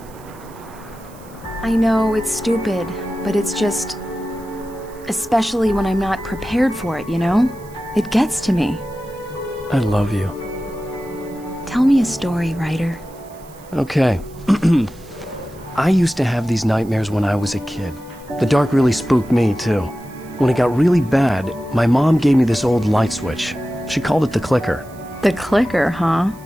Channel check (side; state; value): right; noise; hiss, 25 dB below the sound